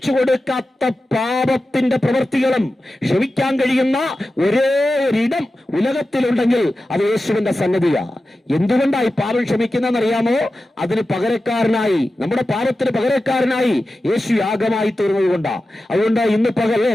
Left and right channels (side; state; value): both; normal; correlation 0.93